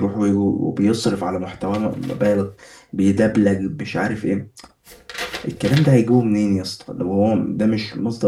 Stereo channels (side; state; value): both; identical; correlation 1.00